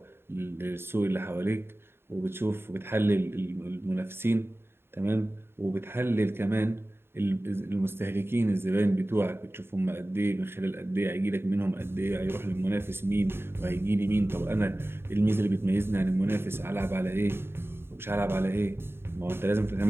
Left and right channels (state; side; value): late; left; 0.11 ms